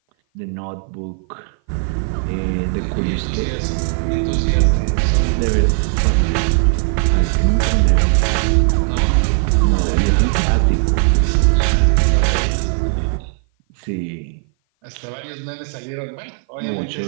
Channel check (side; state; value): left; silent; 56 dB below the other